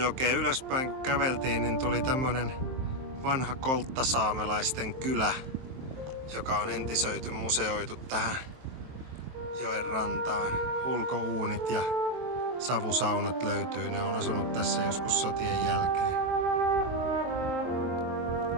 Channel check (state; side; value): late; left; 23 ms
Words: ylöspäin kun käveltiin, niin tuli tämmönen vanha kolttasaamelaisten kylä, joka on entisöity, museoitu tähän joen rantaan. Ulkouunit ja savusaunat löytyy, ne on asunut tässä joskus sotien jälkeen.